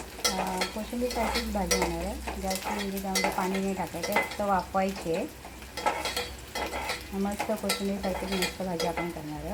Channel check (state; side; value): identical; both; correlation 1.00